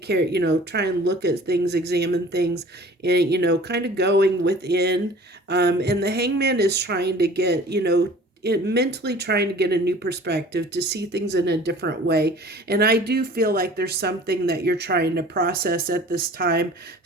you know, try and look at things, examine things, and, you know, kind of going within. And the Hangman is trying to get, you know, mentally trying to get a new perspective, to see things in a different way. And I do feel like there's something that you're trying to process at this time,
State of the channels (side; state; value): both; normal; correlation 0.46